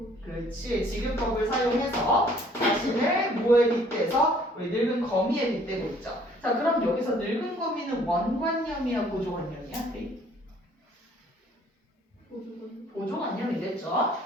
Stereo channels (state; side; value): normal; both; correlation 0.59